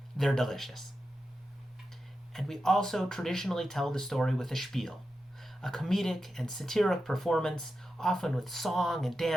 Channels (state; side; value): normal; both; correlation 0.90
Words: they're delicious. And we also traditionally tell the story with a spiel, a comedic and satiric performance, often with song and